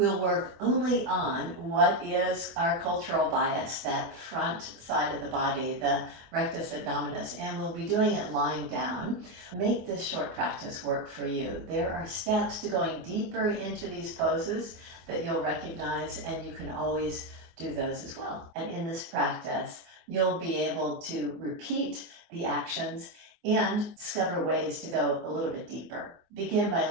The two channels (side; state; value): left; late; 24 ms